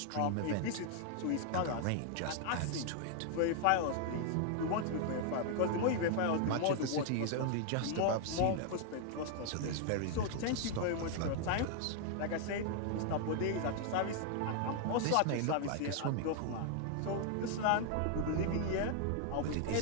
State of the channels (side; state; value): both; different; correlation 0.00